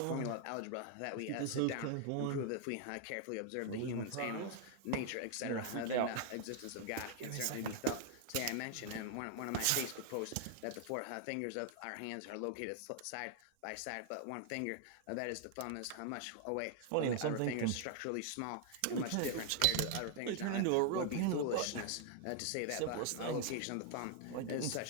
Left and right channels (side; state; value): both; different; correlation 0.00